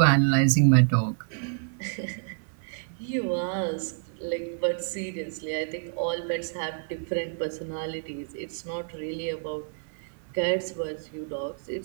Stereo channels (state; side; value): silent; left; digital silence